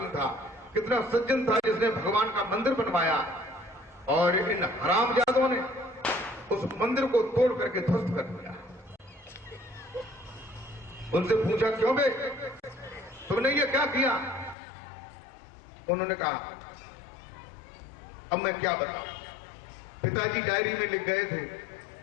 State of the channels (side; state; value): right; drops out; at 14.6 s